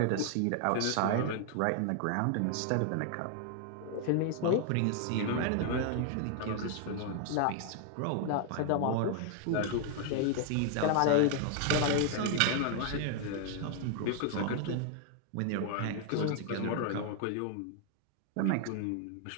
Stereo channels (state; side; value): different; both; correlation 0.00